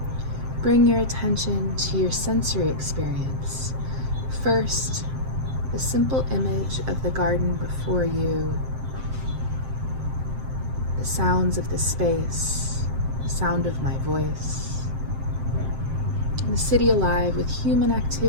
Bring your attention to your sensory experience. First, the simple image of the garden before you, the sounds of the space, the sound of my voice, and the city alive with human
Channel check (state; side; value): late; left; 7.6 ms